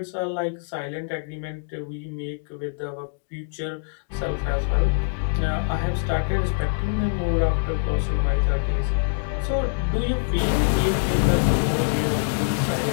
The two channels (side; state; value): right; silent; digital silence